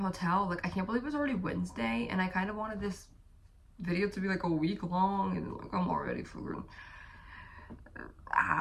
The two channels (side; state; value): both; identical; correlation 1.00